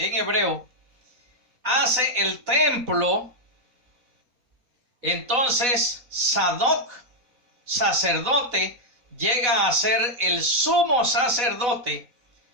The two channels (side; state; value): left; late; 4.0 ms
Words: hebreo, hace el templo. Entonces Sadoc, sacerdote, llega a ser el sumo sacerdote